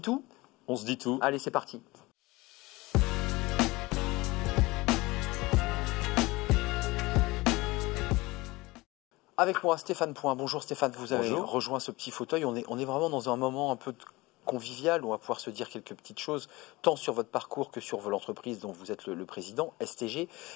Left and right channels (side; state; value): right; quieter; 21.7 dB